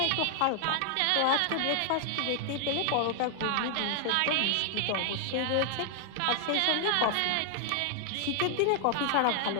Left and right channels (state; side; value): different; both; correlation 0.00